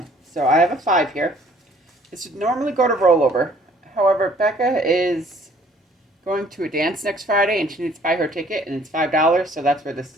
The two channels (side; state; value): both; normal; correlation 0.58